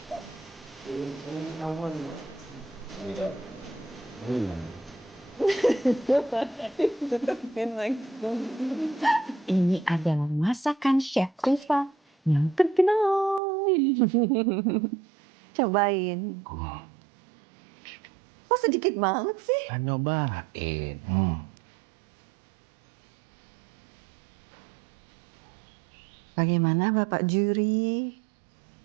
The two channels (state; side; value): drops out; left; at 13.4 s